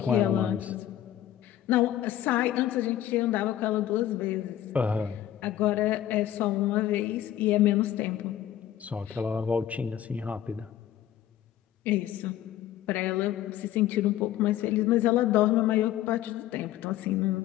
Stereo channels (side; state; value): right; quieter; 12.0 dB